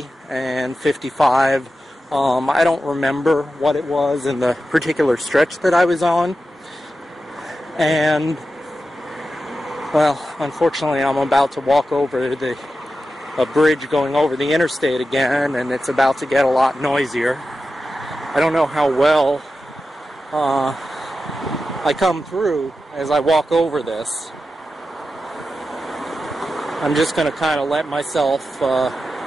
and 55 I don't remember what it was in the particular stretch that I was on. And, well, unfortunately, I'm about to walk over a bridge going over the interstate again, and it's about to get a lot noisier. I don't know how well I come through as I walk over this. I'm just going to kind of let myself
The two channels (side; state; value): both; normal; correlation 0.91